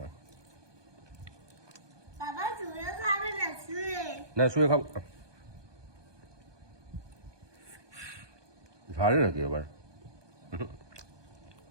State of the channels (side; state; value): left; late; 1.2 ms